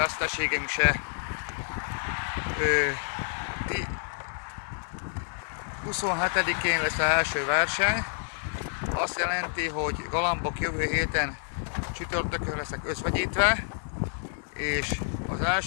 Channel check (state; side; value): silent; right; 59 dB below the other